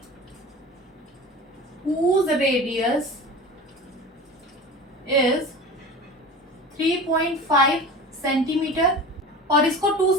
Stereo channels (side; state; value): both; normal; correlation 0.35